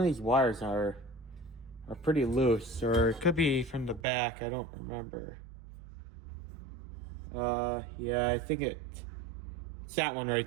of these wires are pretty loose, or it could be from the back. I don't remember. Yeah, I think it's that one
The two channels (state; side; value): drops out; left; at 4.0 s